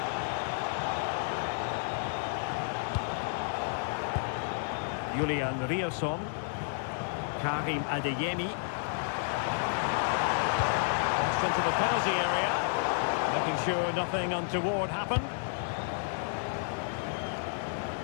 Julian Riosson. Karim Adeyemi. Crossed into the penalty area. Making sure nothing untoward happened.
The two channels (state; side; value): silent; right; digital silence